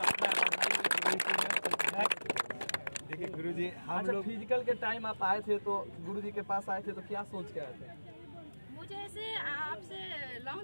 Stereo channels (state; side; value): inverted; both; correlation -1.00